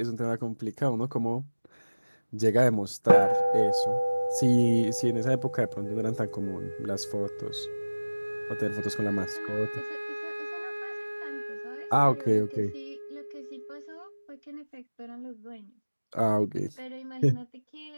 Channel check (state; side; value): inverted; both; correlation -1.00